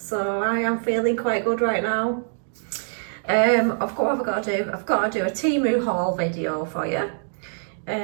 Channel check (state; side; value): silent; left; digital silence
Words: I am feeling quite good right now. What have I got to do? I've got to do a Temu haul video for you.